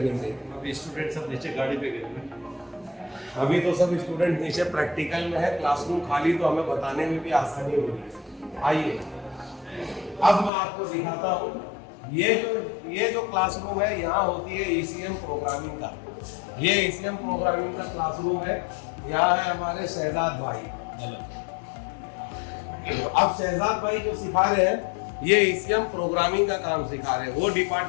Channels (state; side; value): drops out; right; at 10.5 s